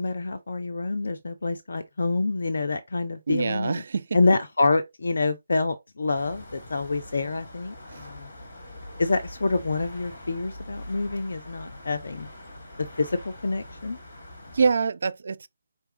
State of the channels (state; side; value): inverted; both; correlation -0.91